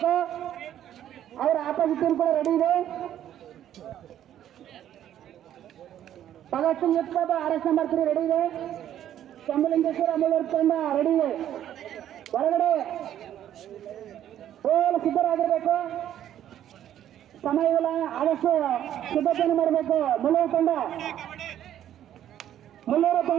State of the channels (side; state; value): left; quieter; 11.2 dB